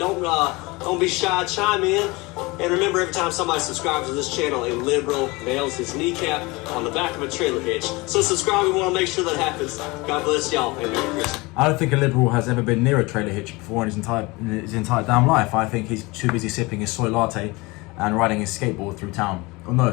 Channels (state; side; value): quieter; right; 24.0 dB